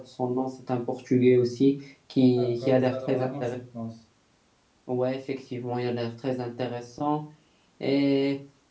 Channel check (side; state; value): both; identical; correlation 1.00